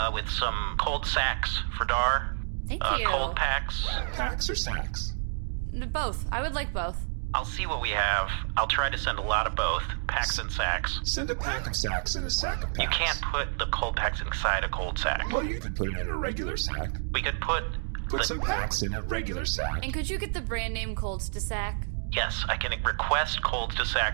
with some cold sacks for Dar. Thank you. Cold packs. Packs or sacks? Both. I would like both. I'll see what we have. I'll try to send a lot of both, packs and sacks. Send a pack of sacks and a sack of packs. You can't put the cold packs inside a cold sack. Well, you could put it in a regular sack. We could put Put some packs in a regular sack. And could you get the brand name Colds to sack? Yes, I can request colds to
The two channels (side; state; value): left; silent; digital silence